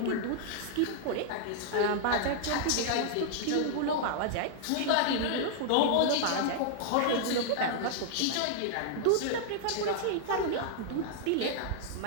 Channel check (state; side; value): different; both; correlation -0.01